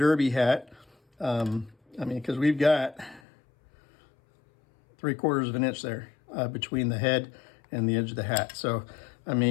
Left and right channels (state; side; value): drops out; right; at 3.2 s